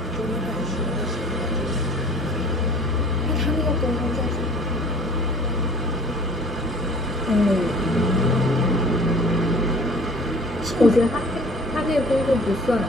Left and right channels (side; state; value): both; normal; correlation 0.48